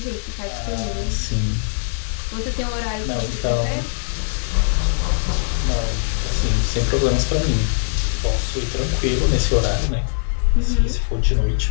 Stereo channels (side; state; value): right; silent; digital silence